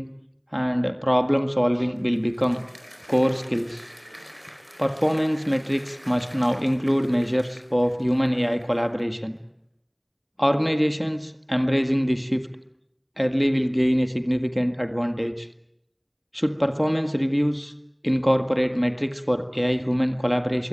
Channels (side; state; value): both; identical; correlation 1.00